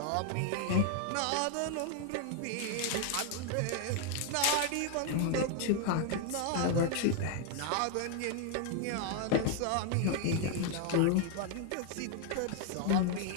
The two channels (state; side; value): different; both; correlation 0.00